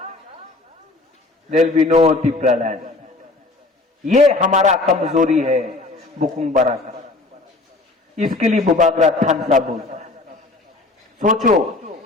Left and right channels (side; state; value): right; quieter; 3.2 dB